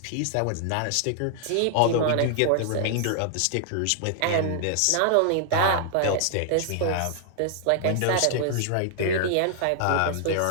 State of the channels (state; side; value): different; both; correlation 0.00